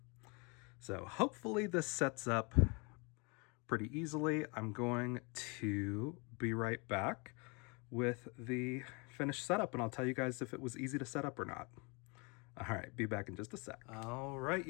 So hopefully this sets up pretty easily. I'm going to be right back with the finished setup, and I'll tell you guys if it was easy to set up or not. All right, be back in just a sec. All right,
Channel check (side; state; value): right; quieter; 30.5 dB